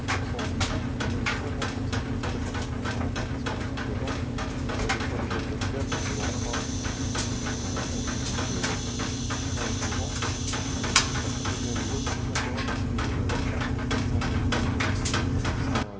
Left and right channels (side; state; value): both; identical; correlation 1.00